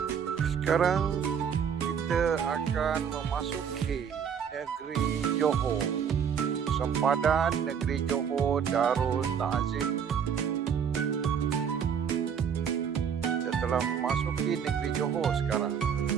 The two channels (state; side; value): quieter; left; 7.5 dB